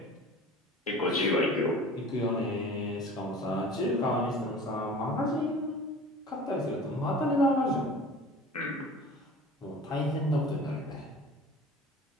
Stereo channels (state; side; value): normal; both; correlation 0.41